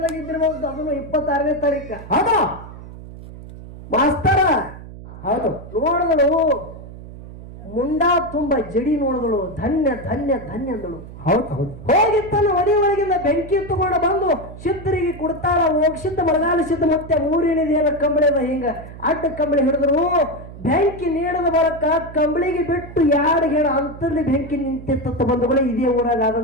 ಇದ್ದಿರಬಹುದು. ಅದನ್ನು 26ನೇ ತಾರೀಕ. ಹೌದಾ ಮಾಸ್ತರ? ಹೌದು. ನೋಡಿದಳು ಮುಂಡಾ ತುಂಬ ಜಡಿ ನೋಡಿದಳು. ಧನ್ಯ ಧನ್ಯ ಧನ್ಯ ಅಂದಳು. ಹೌದು ಹೌದು. ಹೋಗಿ ತನ್ನ ಒಡಿ ಒಳಗಿಂದ ಬೆಂಕಿ ತಗೊಂಡು ಬಂದು ಸಿದ್ಧರಿಗೆ ಕೊಡ್ತಾಳ. ಹೋಗ್ಸಿದ್ದ ಬರಗಾಲ ಸಿದ್ಧ ಮತ್ತೆ 3 ಏನಿದೆಯಲ್ಲ ಕಂಬಳಿ ಅದ ಹಿಂಗ ಅಡ್ಡ ಕಂಬಳಿ ಹಿಡಿದ್ರು. ಬೆಂಕಿ ನೀಡದ ಬರಕ ಕಂಬಳಿಗೆ ಬಿಟ್ಟು 2 ಹೇಳ ಅಂತಲ್ಲಿ ಬೆಂಕಿ ನಿಂತಿತ್ತ ಬಂಧುಗಳೇ. ಇದೇ ಊರಾಗ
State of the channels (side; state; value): right; noise; hum, 15 dB below the sound